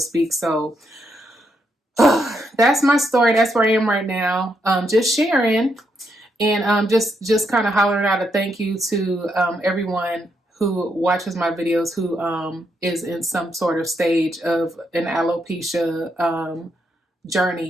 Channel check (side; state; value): both; normal; correlation 0.78